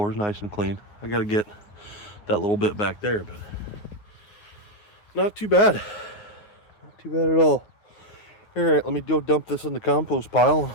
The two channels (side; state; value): right; late; 9.6 ms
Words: is nice and clean. I got to get that little bit back there, but not too bad. Not too bad at all. Alright, let me go dump this in the compost pile